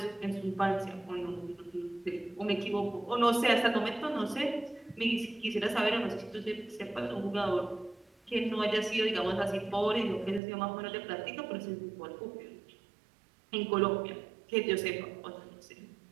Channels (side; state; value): left; drops out; at 10.4 s